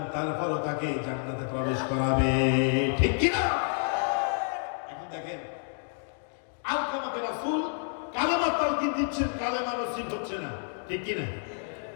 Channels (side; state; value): right; silent; 58 dB below the other